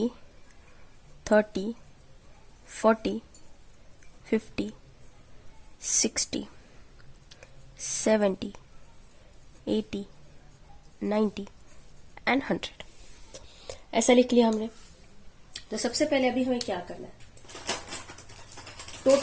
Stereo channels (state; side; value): identical; both; correlation 1.00